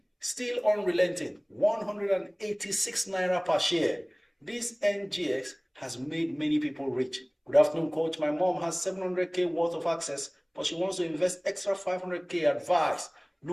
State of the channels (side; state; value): both; identical; correlation 1.00